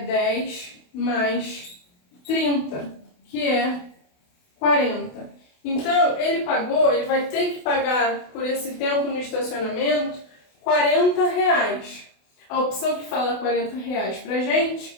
10 mais 30, que é 40. Então, ele vai ter que pagar por esse tempo no estacionamento R$ 40. A opção que fala R$ 40 pra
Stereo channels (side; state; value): right; late; 28 ms